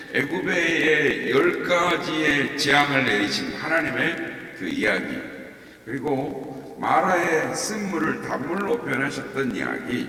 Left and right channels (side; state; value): both; identical; correlation 1.00